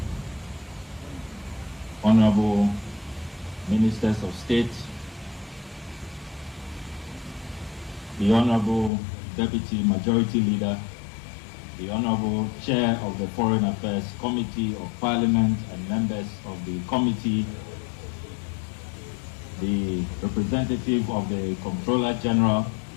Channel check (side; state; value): right; drops out; at 8.9 s